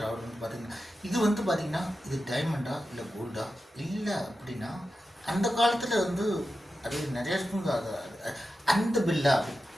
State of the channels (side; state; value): both; normal; correlation 0.91